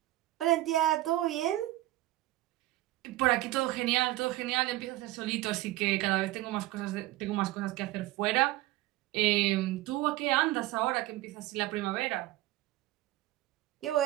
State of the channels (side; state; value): left; quieter; 16.8 dB